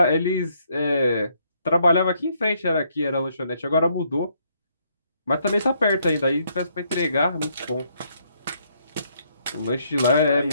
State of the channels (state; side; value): inverted; both; correlation -0.72